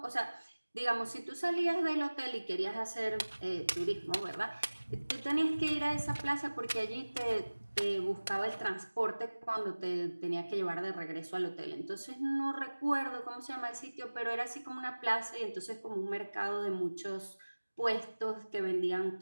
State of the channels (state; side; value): inverted; both; correlation -1.00